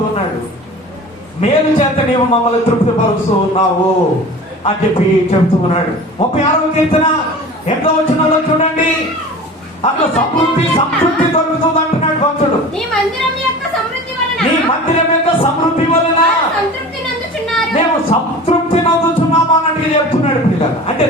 ఉన్నాడు. మేలు చేత నీవు మమ్మల్ని తృప్తిపరుస్తూ ఉన్నావు అని చెప్పి చెబుతూ ఉన్నాడు. 36వ కీర్తన 8వ వచనంలో చూడండి, అట్లా సంతృప్తి దొరుకుతుంది అంటున్నాడు భక్తుడు. నీ మందిరం యొక్క సమృద్ధి వలన మేము సంతృప్తి నందుచున్నాము అన్నట్టుగా చెప్తున్నాడు పిల్లలు. అంటే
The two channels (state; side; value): normal; both; correlation 0.38